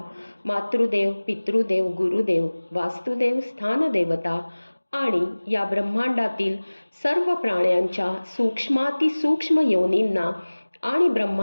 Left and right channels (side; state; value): both; inverted; correlation -1.00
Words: मातृदेव, पितृदेव, गुरुदेव, वास्तुदेव, स्थानदेवता आणि या ब्रह्मांडातील सर्व प्राण्यांच्या सूक्ष्मातिसूक्ष्म योनींना आणि